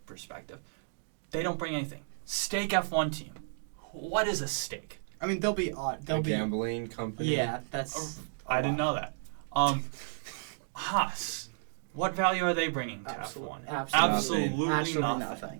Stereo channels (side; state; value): left; silent; digital silence